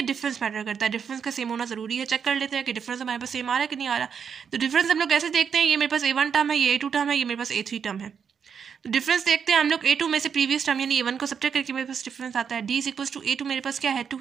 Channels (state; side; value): quieter; left; 7.0 dB